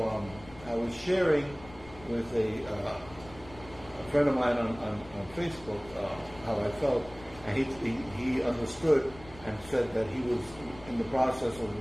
I was sharing with a friend of mine on Facebook how I felt, and he understood and said that he was in the process of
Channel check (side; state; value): left; noise; rumble, 19 dB below the sound